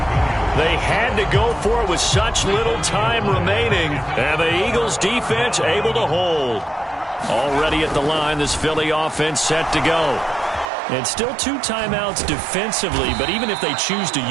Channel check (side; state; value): left; drops out; at 10.7 s